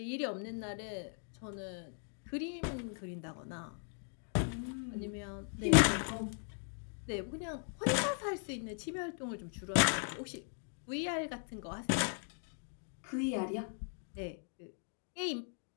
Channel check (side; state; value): right; silent; 52 dB below the other